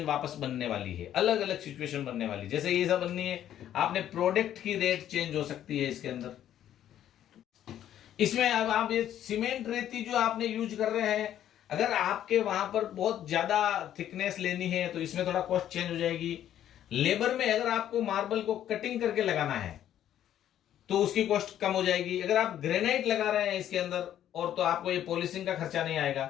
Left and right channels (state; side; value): quieter; right; 11.2 dB